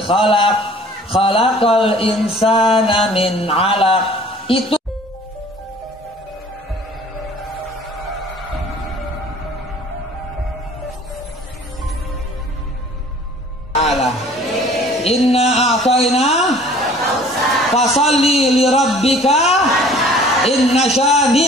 khalaqal insana min 'alaq. Itu Allah. Inna a'tayna fasalli li rabbika inna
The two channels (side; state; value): both; normal; correlation 0.51